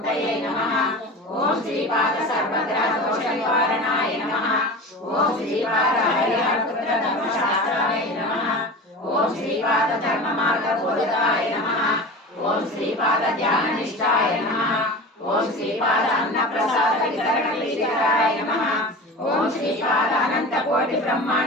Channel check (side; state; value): both; normal; correlation 0.32